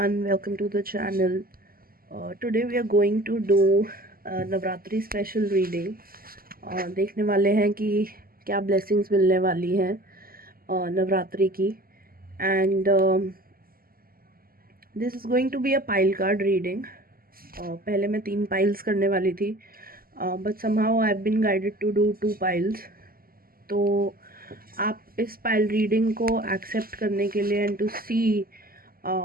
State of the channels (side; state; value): left; late; 0.42 ms